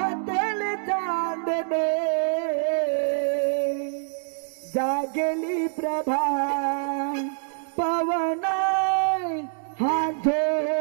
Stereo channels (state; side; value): silent; left; digital silence